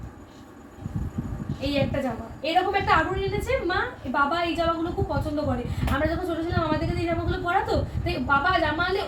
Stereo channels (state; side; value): identical; both; correlation 1.00